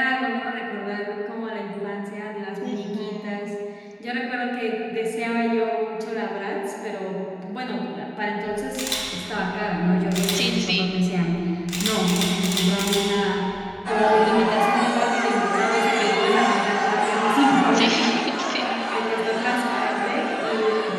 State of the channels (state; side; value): identical; both; correlation 1.00